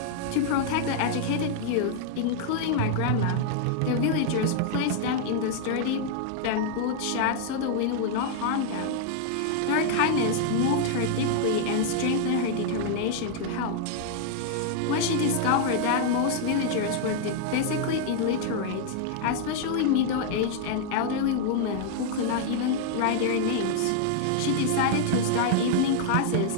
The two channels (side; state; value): both; different; correlation 0.00